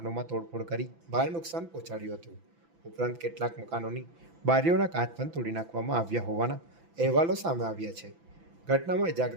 તોડફોડ કરી ભારે નુકસાન પહોંચાડ્યું હતું. ઉપરાંત કેટલાક મકાનોની બારીઓના કાચ પણ તોડી નાખવામાં આવ્યા હોવાના અહેવાલો સામે આવ્યા છે. ઘટનામાં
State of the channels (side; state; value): left; late; 6.0 ms